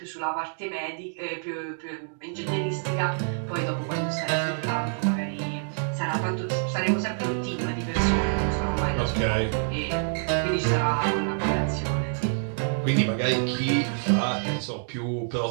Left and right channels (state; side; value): silent; left; digital silence